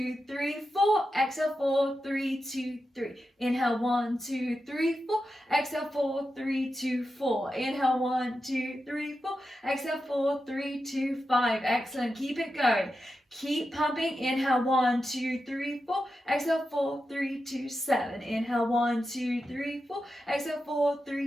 3, 4. Exhale 4, 3, 2, 3. Inhale 1, 2, 3, 4. Exhale 4, 3, 2, 4. Inhale 1, 2, 3, 4. Exhale 4, 3, 2, 5. Excellent. Keep it going. Keep pumping. Inhale 1, 2, 3, 4. Exhale 4, 3, 2, 7. Inhale 1, 2, 3, 4. Exhale 4,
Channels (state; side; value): normal; both; correlation 0.90